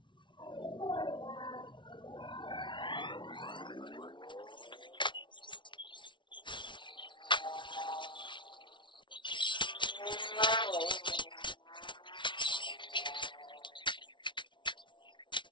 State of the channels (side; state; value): right; late; 0.24 ms